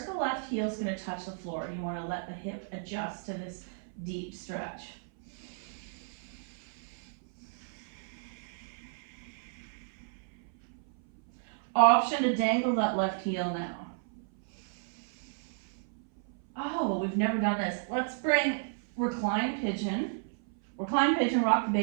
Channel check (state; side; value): silent; left; 56 dB below the other